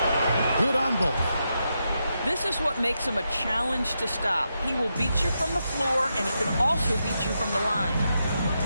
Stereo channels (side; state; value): both; inverted; correlation -0.85